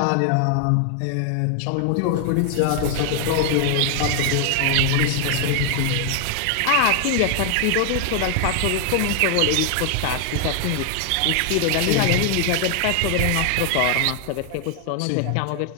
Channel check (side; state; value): both; different; correlation 0.00